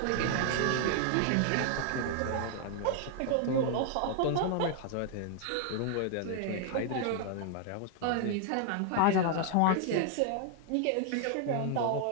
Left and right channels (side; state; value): both; different; correlation 0.00